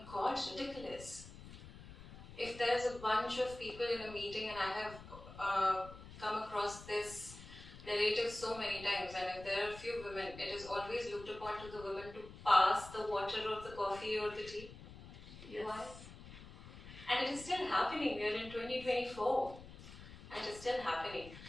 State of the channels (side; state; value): left; noise; rumble, 15 dB below the sound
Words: God, ridiculous. If there's a bunch of people in a meeting and I have come across this narrative so many times, and if there are a few women, it is always looked upon to the women to pass the water or the coffee or the tea. Yes. Why? And it is still happening. We are in 2024 and it is still happening.